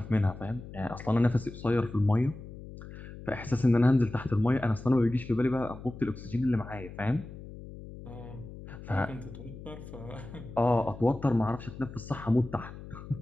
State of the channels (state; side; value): noise; left; hum, 14 dB below the sound